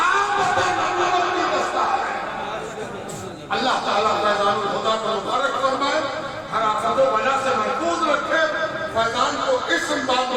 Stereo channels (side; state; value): both; identical; correlation 1.00